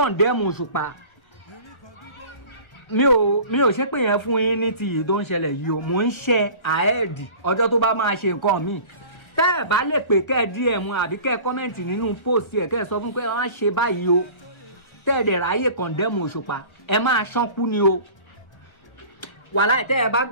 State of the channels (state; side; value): late; right; 1.3 ms